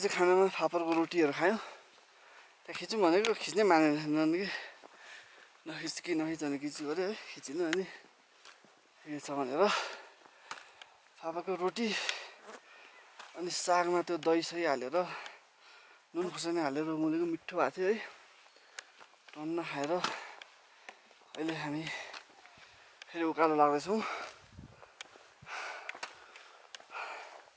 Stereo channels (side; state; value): both; identical; correlation 1.00